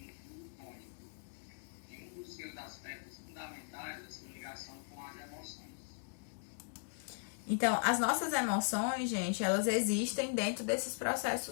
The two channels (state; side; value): silent; right; digital silence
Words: um tônico. E um dos seus aspectos fundamentais é sua ligação com as emoções. Então, as nossas emoções, gente, elas existem dentro desses